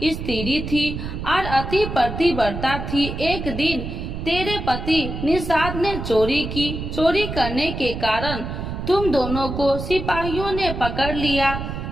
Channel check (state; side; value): noise; right; rumble, 6 dB below the sound